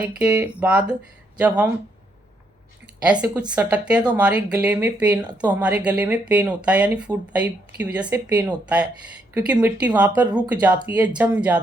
के बाद जब हम ऐसे कुछ सटकते हैं तो हमारे गले में पेन होता है, यानी फूड पाइप की वजह से पेन होता है, क्योंकि मिट्टी वहाँ पर रुक जाती है, जम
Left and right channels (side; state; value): both; normal; correlation 0.75